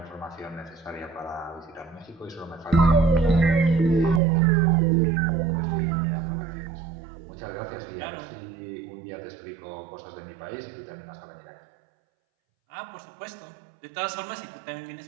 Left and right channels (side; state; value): left; drops out; at 4.2 s